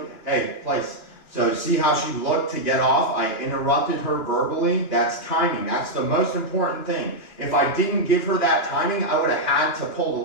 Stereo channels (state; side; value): late; right; 2.8 ms